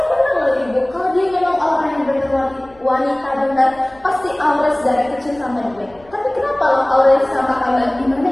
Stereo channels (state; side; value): noise; left; rumble, 28 dB below the sound